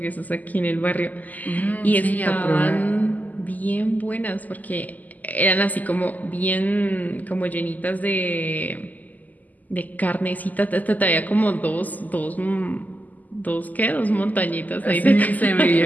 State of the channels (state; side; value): late; right; 0.081 ms